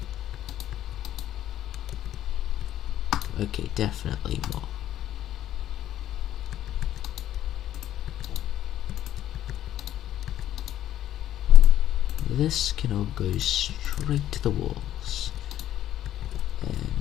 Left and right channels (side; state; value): right; quieter; 12.1 dB